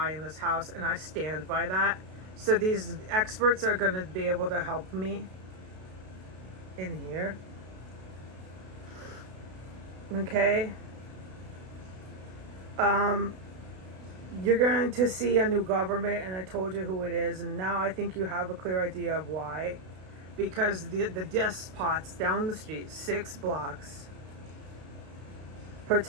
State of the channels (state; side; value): late; left; 32 ms